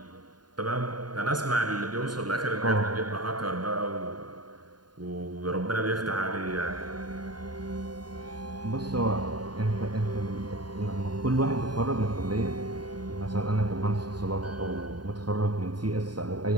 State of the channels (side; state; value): left; late; 0.70 ms